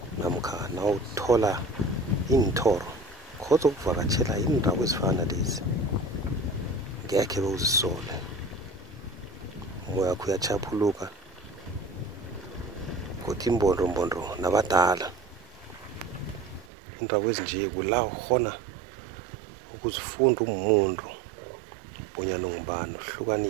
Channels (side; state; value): left; drops out; at 16.7 s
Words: namkha nawuthola inthoro khodza ukuvakatshela indawo ezifana lezi ngekhe bewuzisole umoya wakho uyachaphuluka kodwa imbondombondo nabadala indawo ezinje kula ukhona ukuzifunda umuntu bonyana ungubani